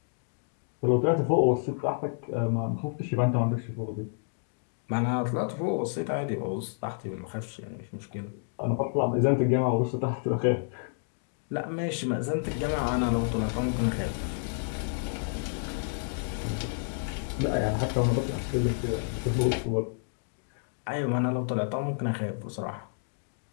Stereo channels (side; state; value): right; silent; digital silence